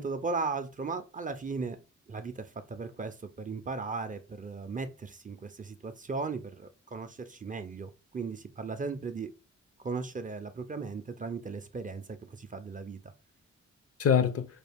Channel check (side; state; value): both; normal; correlation 0.21